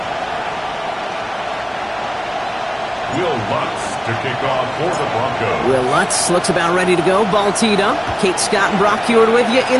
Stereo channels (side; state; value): both; identical; correlation 1.00